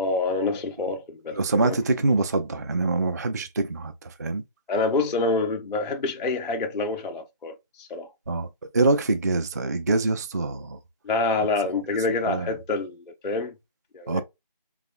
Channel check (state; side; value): inverted; both; correlation -0.37